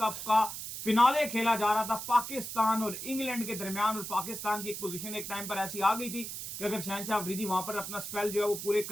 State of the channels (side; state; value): right; noise; hiss, 7 dB below the sound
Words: का फिनाले खेला जा रहा था पाकिस्तान और इंग्लैंड के दरमियान, और पाकिस्तान की एक पोजीशन एक टाइम पर ऐसी आ गई थी कि अगर शाहीन शाह अफरीदी वहां पर अपना स्पेल जो है वो पूरे